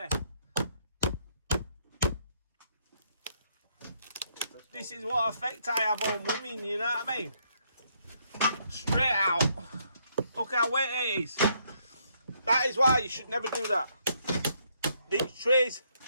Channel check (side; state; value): both; inverted; correlation -0.72